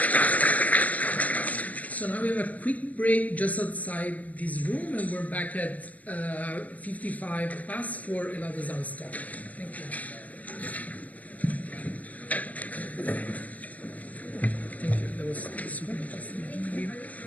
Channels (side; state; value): right; late; 0.074 ms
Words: So now we have a quick break just outside this room, and we're back at 55 past for another Zan's talk. Thank you. Thank you. That was super interesting.